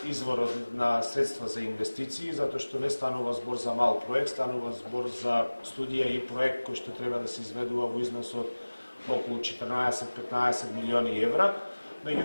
изворот на средства за инвестиции, затоа што не станува збор за мал проект, станува збор за студија и проект кој што треба да се изведува во износ од околу 14-15 милиони евра.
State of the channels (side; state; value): both; inverted; correlation -1.00